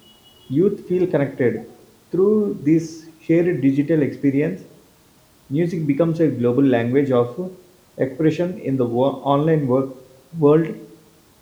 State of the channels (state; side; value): identical; both; correlation 1.00